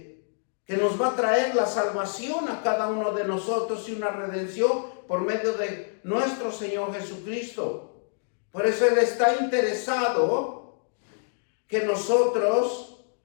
que nos va a traer la salvación a cada uno de nosotros y una redención por medio de nuestro Señor Jesucristo. Por eso Él está interesado que nosotros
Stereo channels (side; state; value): right; silent; digital silence